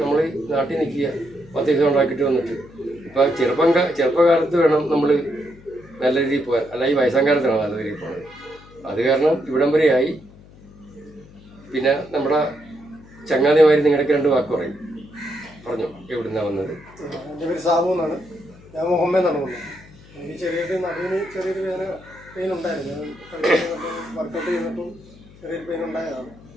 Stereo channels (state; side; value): noise; left; hum, 22 dB below the sound